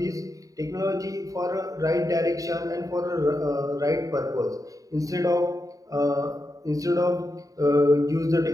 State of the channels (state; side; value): late; left; 0.16 ms